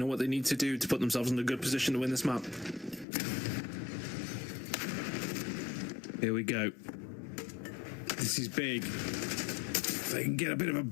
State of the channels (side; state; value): right; drops out; at 3.1 s